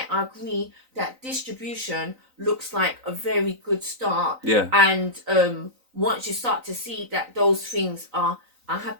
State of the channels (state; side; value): late; left; 3.9 ms